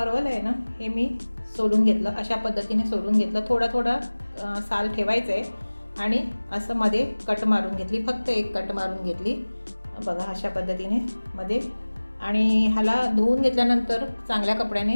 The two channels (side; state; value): both; inverted; correlation -1.00